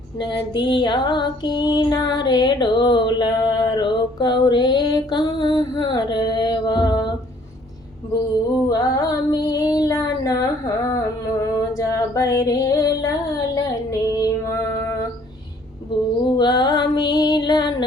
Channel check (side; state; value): both; normal; correlation 0.60